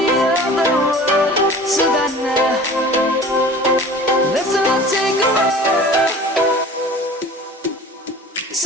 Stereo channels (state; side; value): normal; both; correlation 0.42